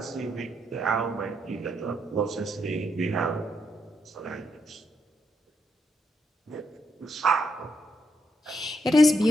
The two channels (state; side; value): normal; both; correlation 0.79